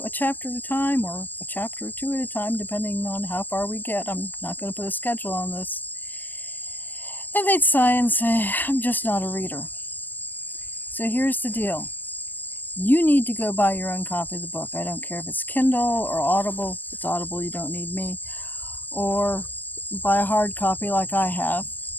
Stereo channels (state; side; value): late; right; 0.090 ms